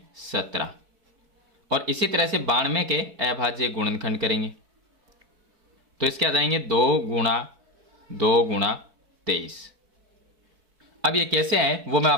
17, और इसी तरह से 92 के अभाज्य गुणनखंड करेंगे तो इसके आ जाएंगे 2 गुणा 23। अब ये कैसे है वो मैं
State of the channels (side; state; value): left; late; 4.6 ms